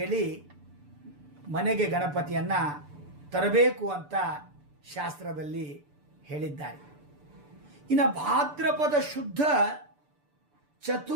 ಮನೆಗೆ ಗಣಪತಿಯನ್ನು ತರಬೇಕು ಅಂತ ಶಾಸ್ತ್ರದಲ್ಲಿ ಹೇಳಿದ್ದಾರೆ. ಇನ್ನು ಭಾದ್ರಪದ ಶುದ್ಧ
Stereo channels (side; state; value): left; late; 6.8 ms